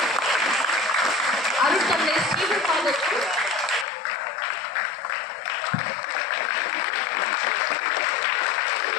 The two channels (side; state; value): right; drops out; at 3.9 s